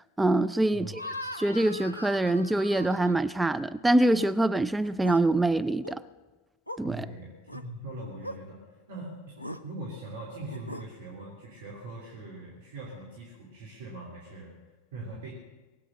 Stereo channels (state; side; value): normal; both; correlation 0.86